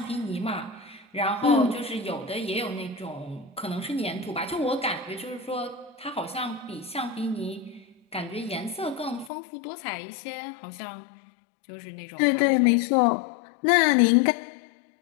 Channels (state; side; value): drops out; right; at 9.3 s